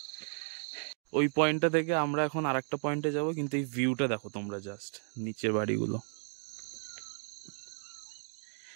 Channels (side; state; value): left; silent; 55 dB below the other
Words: ওই পয়েন্টটা থেকে আমরা এখন আর একটা পয়েন্টে যাবো, কিন্তু এই ভিউটা দেখো তোমরা, জাস্ট নিচের বাড়িগুলো।